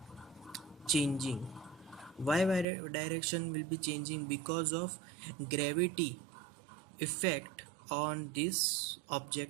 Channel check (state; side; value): drops out; left; at 2.7 s